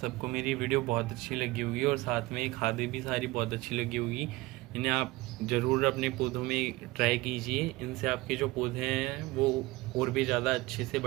मेरी वीडियो बहुत अच्छी लगी होगी और साथ में ये खादें भी सारी बहुत अच्छी लगी होगी। इन्हें आप ज़रूर अपने पौधों में ट्राई कीजिए, इनसे आपके जो पौधे हैं वो और भी ज़्यादा अच्छे से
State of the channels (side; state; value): left; quieter; 20.7 dB